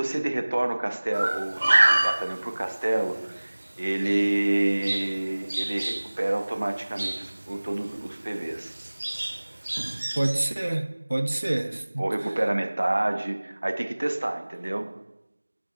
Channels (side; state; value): both; inverted; correlation -1.00